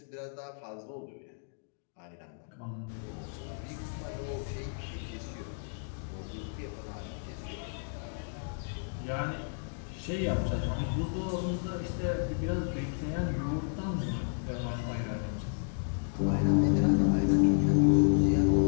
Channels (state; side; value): silent; right; digital silence